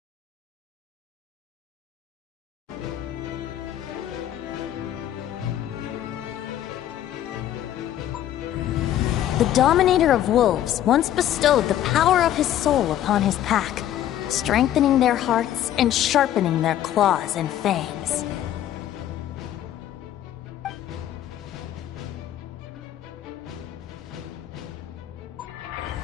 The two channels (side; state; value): right; quieter; 11.9 dB